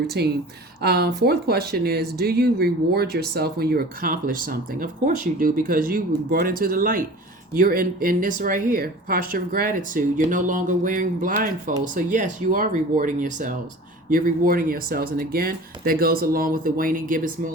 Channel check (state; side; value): normal; both; correlation 0.40